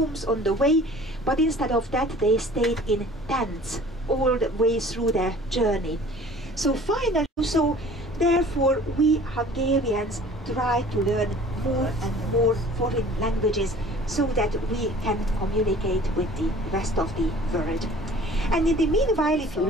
on the way, but instead of that they stayed in tents all the way through their journey. So finally, therefore we Hungarians try to learn more and more foreign languages so that we can communicate with the rest of the world. And in the meanwhile, if you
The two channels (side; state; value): both; normal; correlation 0.48